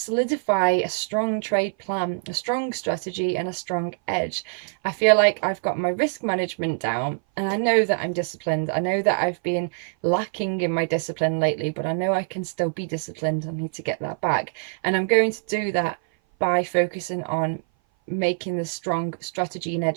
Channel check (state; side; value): silent; left; 57 dB below the other